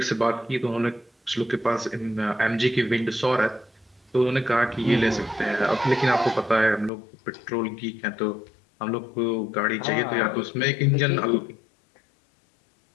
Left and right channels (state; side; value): drops out; right; at 6.9 s